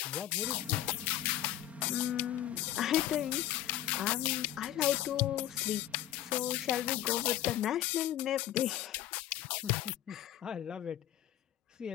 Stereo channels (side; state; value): right; quieter; 12.7 dB